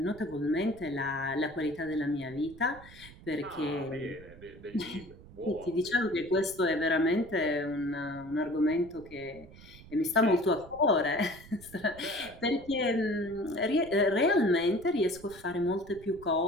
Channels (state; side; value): noise; right; rumble, 20 dB below the sound